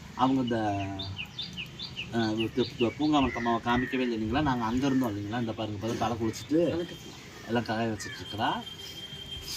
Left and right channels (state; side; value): identical; both; correlation 1.00